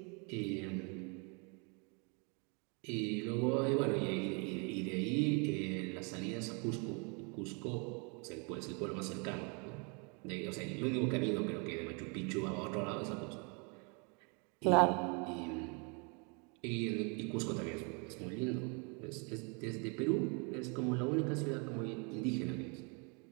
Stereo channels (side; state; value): left; quieter; 34.2 dB